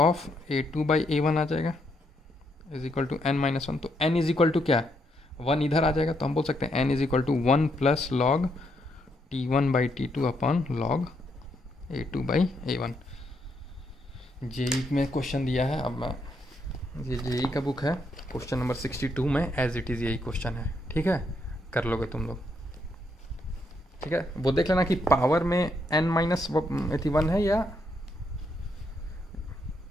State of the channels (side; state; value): both; normal; correlation 0.76